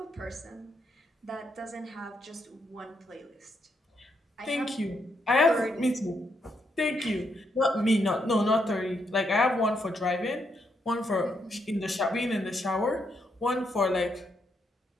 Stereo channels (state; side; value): normal; both; correlation 0.78